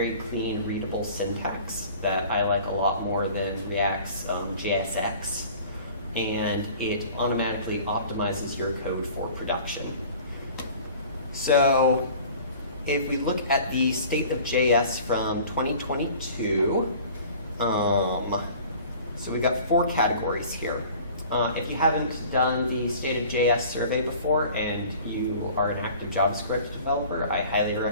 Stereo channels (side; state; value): both; inverted; correlation -0.46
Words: clean, readable syntax that I like a lot more than React's JSX, and it automatically optimizes your code for production. So if we look at the state of JS from 2022, so we've got 4 categories here. If you haven't done the State of JS survey before and you are an active JavaScript developer, I highly